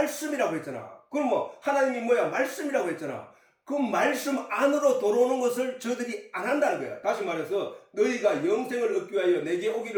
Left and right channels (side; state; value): both; identical; correlation 1.00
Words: 했잖아. 그럼 뭐 하나님이 뭐야? 말씀이라고 했잖아. 그 말씀 안으로 들어오는 것을 저들이 안 한다는 거야. 다시 말해서 너희가 영생을 얻기 위하여 내게